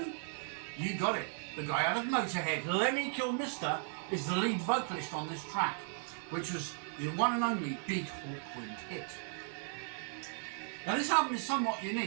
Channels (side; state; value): left; silent; 54 dB below the other